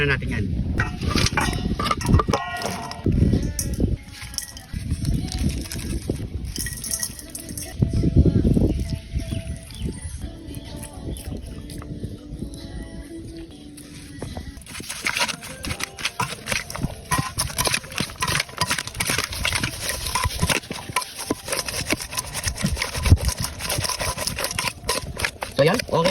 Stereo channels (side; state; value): both; identical; correlation 1.00